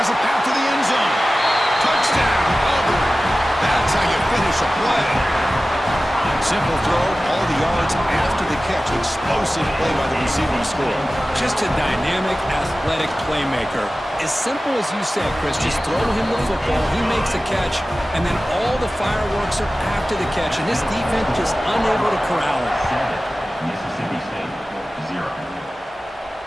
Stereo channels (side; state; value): both; normal; correlation 0.96